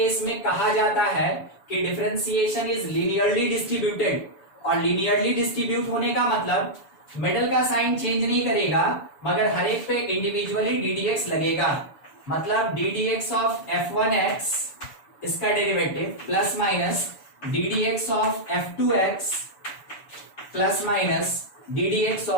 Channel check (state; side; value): late; right; 7.0 ms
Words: में कहा जाता है कि डिफरेंशिएशन इज लीनियरली डिस्ट्रीब्यूटेड। और लीनियरली डिस्ट्रीब्यूट होने का मतलब मिडल का साइन चेंज नहीं करेगा, मगर हर एक पे इंडिविजुअली ddx लगेगा। मतलब ddx ऑफ f1x इसका derivative plus minus ddx of f2x plus minus ddx